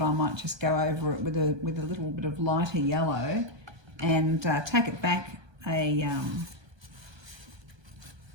I might just go over it with a little bit of lighter yellow and take it back a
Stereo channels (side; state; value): left; late; 1.2 ms